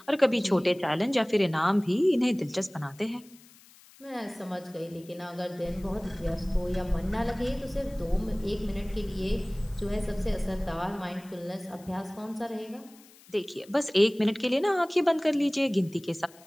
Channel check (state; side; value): noise; left; hiss, 25 dB below the sound